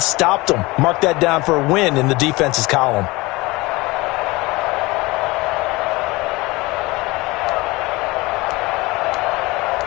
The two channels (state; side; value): quieter; right; 22.3 dB